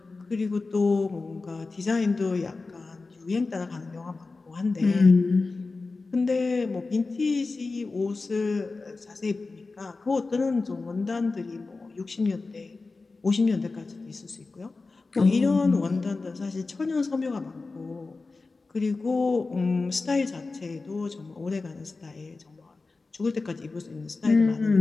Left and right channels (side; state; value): right; quieter; 3.8 dB